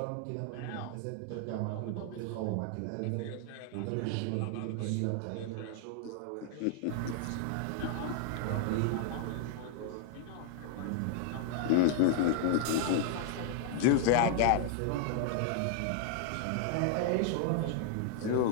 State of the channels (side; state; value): both; different; correlation 0.00